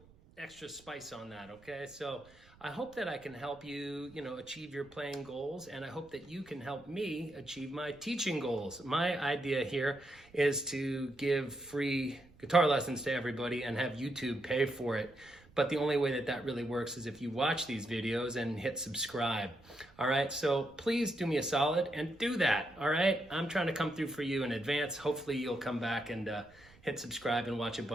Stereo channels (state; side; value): noise; right; rumble, 26 dB below the sound